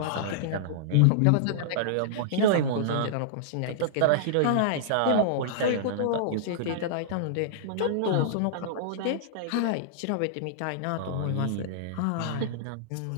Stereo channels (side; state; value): both; different; correlation -0.02